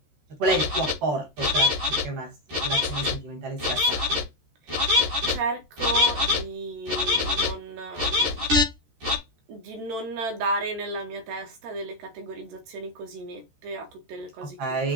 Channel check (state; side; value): late; left; 13 ms